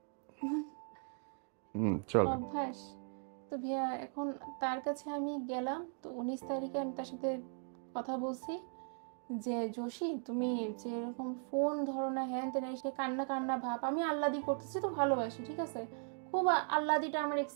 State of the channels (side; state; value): left; silent; 52 dB below the other